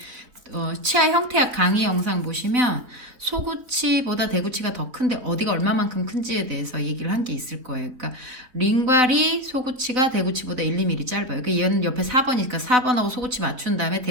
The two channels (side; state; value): left; late; 3.7 ms